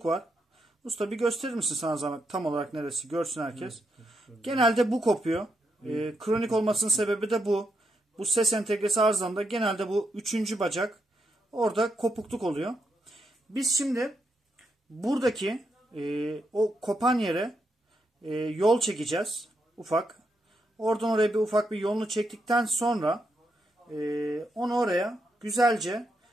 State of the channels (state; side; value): normal; both; correlation 0.81